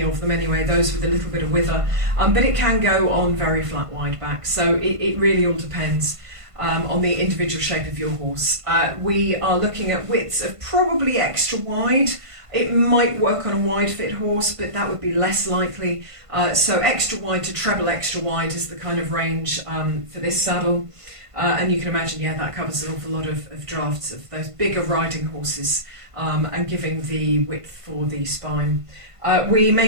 of them anyway, those with a little bit of wither, but it can go on very flat wide backs, so it really all depends on the individual shape of your horse. We are looking at widths of probably extra wide. It might work on a wide fit horse, but that would be less likely. So extra wide to treble extra wide is the kind of range for this saddle. And you can imagine, that covers an awful lot of drafts of those bigger riding horses, and giving the width for the spine. We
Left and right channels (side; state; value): left; late; 1.5 ms